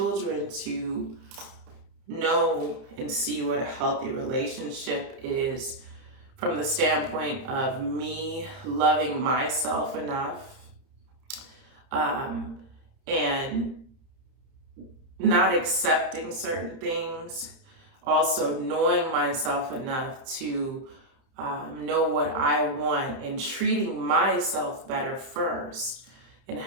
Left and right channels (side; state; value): left; late; 31 ms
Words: to know and see what a healthy relationship is, from the standpoint of me loving myself enough, and not accepting certain things, also knowing myself enough to know what I want, and treating myself better first, and